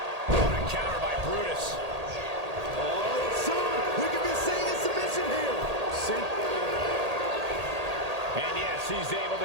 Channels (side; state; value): left; late; 1.8 ms